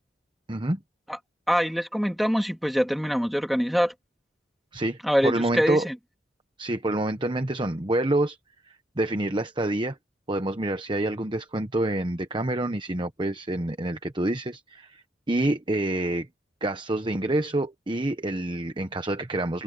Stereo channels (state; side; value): normal; both; correlation 0.79